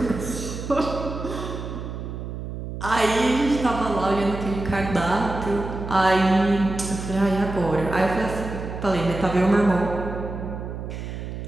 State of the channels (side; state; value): right; noise; hum, 7 dB below the sound